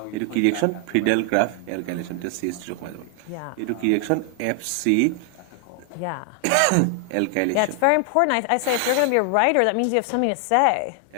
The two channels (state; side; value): different; both; correlation 0.00